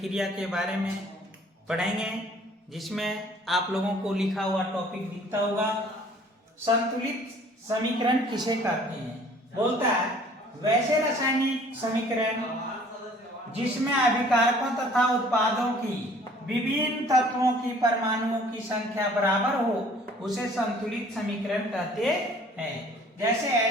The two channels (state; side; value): normal; both; correlation 0.54